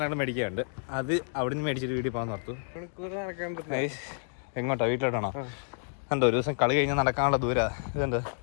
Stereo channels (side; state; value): right; silent; 58 dB below the other